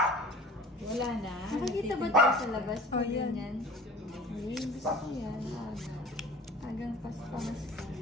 Wala na. Nakikita ba tayo sa labas? Oh, yan. Yan. Ay, gusto ko yan. Agang pas-pas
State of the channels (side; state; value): both; normal; correlation 0.43